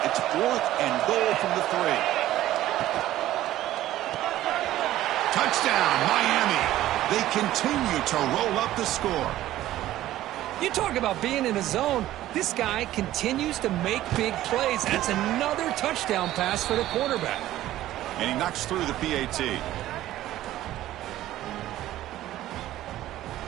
It's 4th and goal from the 3. Touchdown, Miami. They continue to roll up the score. You talk about being in a zone. This guy continues to make big plays. That's another touchdown pass for the quarterback. And he knocks through the PAT.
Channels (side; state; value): left; quieter; 14.3 dB